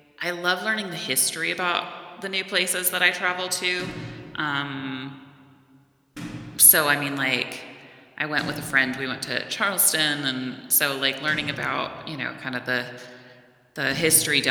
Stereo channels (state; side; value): identical; both; correlation 1.00